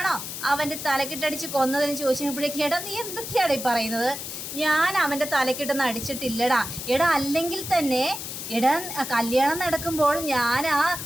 അവൻ്റെ തലക്കിട്ടടിച്ച് കൊന്നതെന്ന് ചോദിച്ചപ്പോഴേക്കും എടാ നീ എന്തൊക്കെയാണ് ഈ പറയുന്നത്? ഞാൻ അവൻ്റെ തലക്കിട്ടൊന്നും അടിച്ചിട്ടില്ലടാ. എടാ അല്ലെങ്കിൽ തന്നെ എടാ കല്യാണം നടക്കുമ്പോൾ ഞാൻ ആ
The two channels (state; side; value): noise; left; hiss, 7 dB below the sound